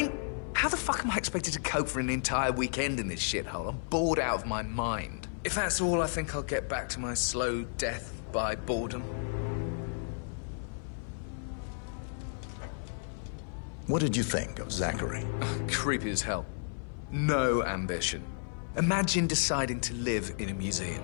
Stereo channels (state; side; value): silent; right; 56 dB below the other